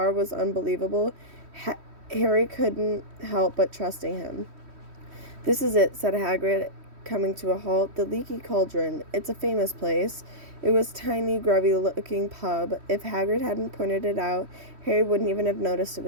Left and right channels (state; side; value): late; left; 3.1 ms